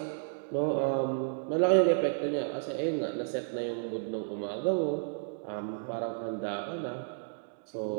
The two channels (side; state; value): left; silent; digital silence